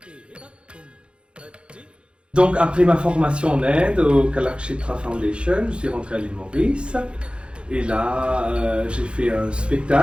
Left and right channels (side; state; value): left; late; 0.056 ms